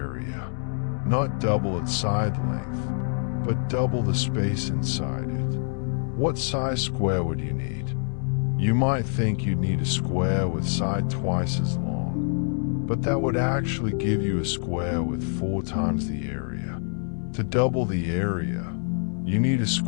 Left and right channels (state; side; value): silent; right; 56 dB below the other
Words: Not double its side length, but double the space inside it. What size square would you need? You might think you'd need a square with side twice as long, but that would actually give you a square with 4 times the area. To double the area, you need a